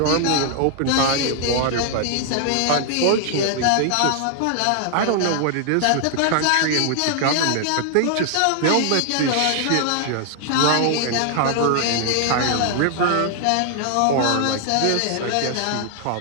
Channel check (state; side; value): different; both; correlation 0.00